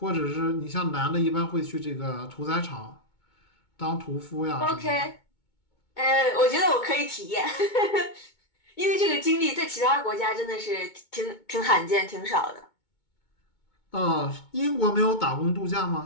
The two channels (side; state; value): right; late; 2.2 ms